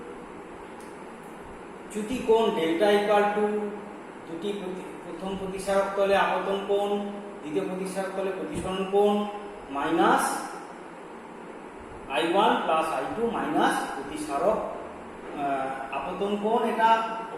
চ্যুতি কোণ ডেল্টা ইকুয়াল টু দুটি প্রথম প্রতিসারক তলে আপতন কোণ, দ্বিতীয় প্রতিসারক তলে প্রতিসরণ কোণ minus I1 plus I2 minus প্রতিসারক আপতন কোণ, এটা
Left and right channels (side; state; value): both; identical; correlation 1.00